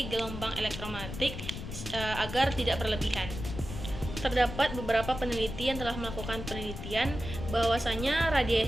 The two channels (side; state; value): left; noise; rumble, 8 dB below the sound